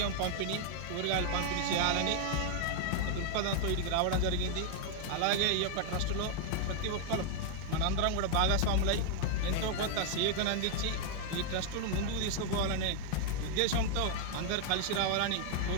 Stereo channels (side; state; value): both; different; correlation 0.00